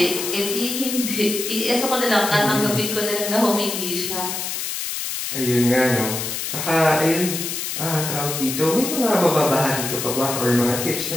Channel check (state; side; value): noise; left; hiss, 4 dB below the sound